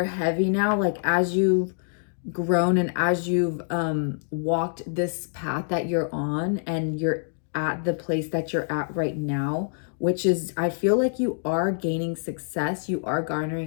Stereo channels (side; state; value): right; silent; digital silence